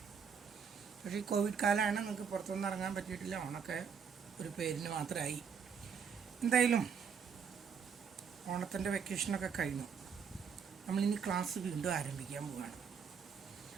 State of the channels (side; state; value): left; quieter; 6.6 dB